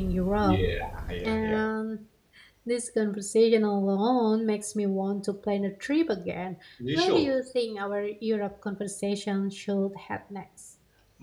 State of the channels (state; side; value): identical; both; correlation 1.00